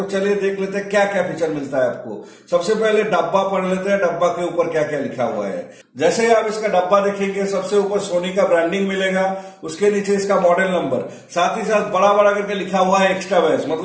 चलिए देख लेते हैं क्या क्या फीचर मिलता है आपको। सबसे पहले डब्बा पढ़ लेते हैं, डब्बा के ऊपर क्या क्या लिखा हुआ है। जैसे ही आप इसका डब्बा देखेंगे, सबसे ऊपर सोनी का ब्रांडिंग मिलेगा, उसके नीचे इसका मॉडल नंबर, साथ ही साथ बड़ा बड़ा करके लिखा हुआ है एक्स्ट्रा बेस,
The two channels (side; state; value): both; identical; correlation 1.00